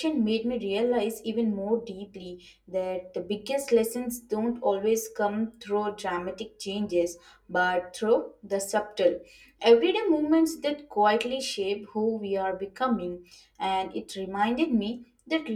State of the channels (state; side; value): identical; both; correlation 1.00